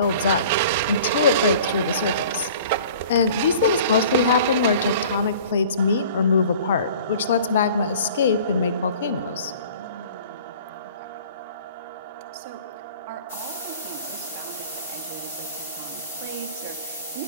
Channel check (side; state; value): both; inverted; correlation -0.46